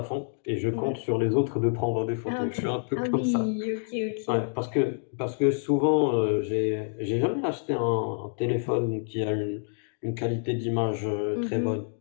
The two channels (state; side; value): silent; right; digital silence